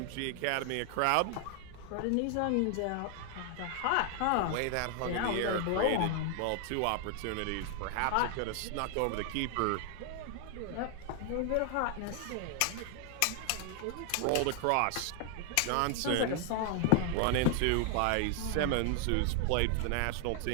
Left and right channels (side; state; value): both; different; correlation 0.00